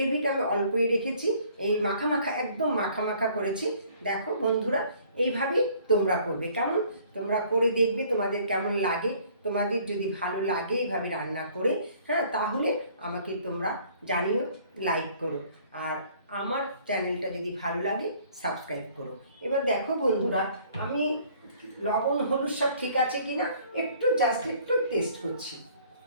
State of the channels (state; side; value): inverted; both; correlation -0.57